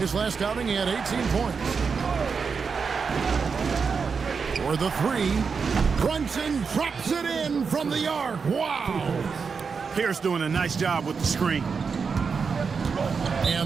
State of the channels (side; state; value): left; quieter; 5.5 dB